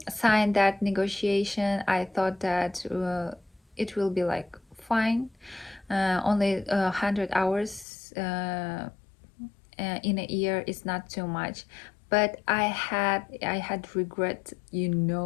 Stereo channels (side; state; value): right; drops out; at 7.9 s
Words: that negotiation. I thought that it will be like fine, only 100 hours in a year is not too much. But I had regret,